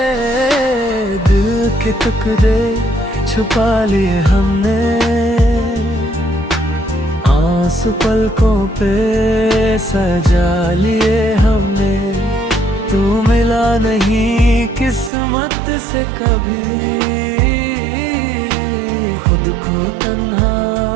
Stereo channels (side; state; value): left; drops out; at 15.1 s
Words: दिल के टुकड़े छुपा लिए हमने, आंसू पलकों पे सजा लिए हमने। तू मिला नहीं किस्मत से कभी, खुद को तन्हा